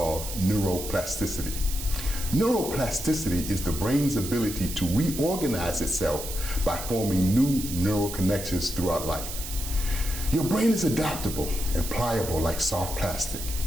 neuroplasticity. Neuroplasticity is the brain's ability to reorganize itself by forming new neural connections throughout life. Your brain is adaptable and pliable like soft plastic.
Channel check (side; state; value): right; noise; hiss, 8 dB below the sound